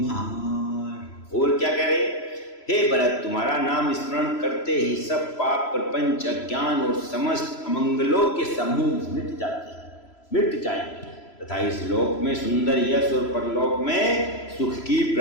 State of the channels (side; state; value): right; late; 3.0 ms